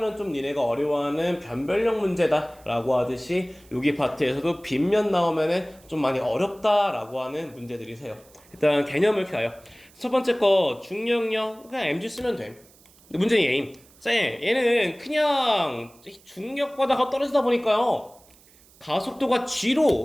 좀 니네가 어려워하는 변별력 문제다라고 하듯이 여기 파트에서도 빗면 나오면은 좀 많이 어렵다라고 하는 문제들이세요. 일단 개념을 이렇게 가요. 첫 번째 거 중력력 그냥 mg 쓰면 돼. 문제는 얘임. 얘는 그냥 중력바다가 떨어지다 보니까요. 가속도가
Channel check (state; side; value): noise; right; hiss, 27 dB below the sound